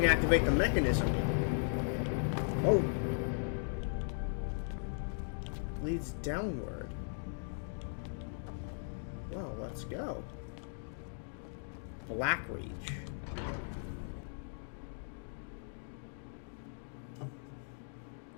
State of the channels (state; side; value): silent; right; digital silence